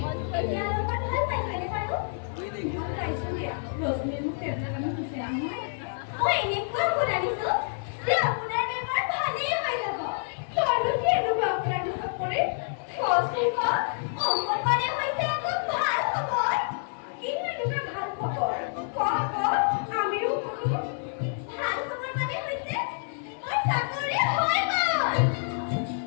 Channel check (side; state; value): right; silent; digital silence